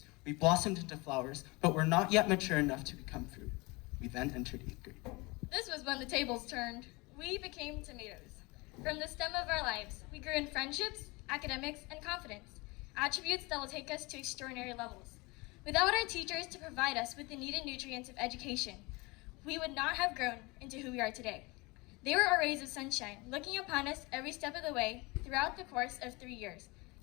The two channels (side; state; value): right; quieter; 25.2 dB